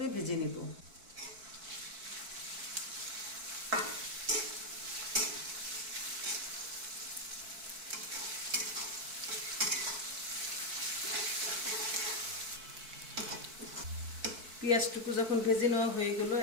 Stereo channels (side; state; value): left; late; 4.5 ms